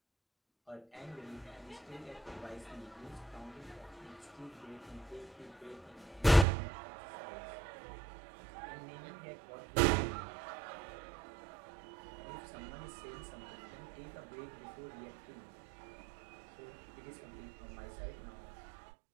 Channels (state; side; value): drops out; left; at 6.5 s